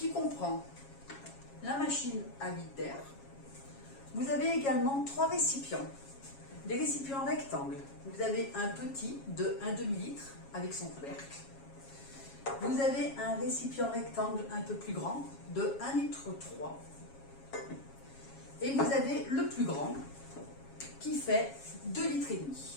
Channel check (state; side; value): late; right; 7.3 ms